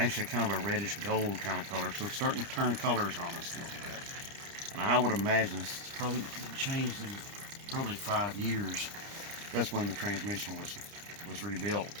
kind of a reddish gold kind of color. So it's starting to turn colors on us a little bit. And I would imagine it's probably changed in probably 5 years. That's when the transmission was rebuilt.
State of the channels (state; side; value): late; left; 30 ms